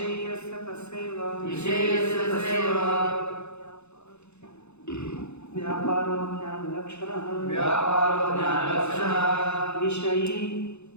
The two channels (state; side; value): late; right; 0.81 ms